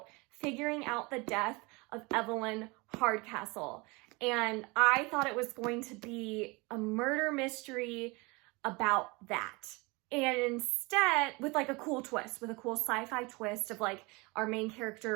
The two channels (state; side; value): quieter; left; 26.2 dB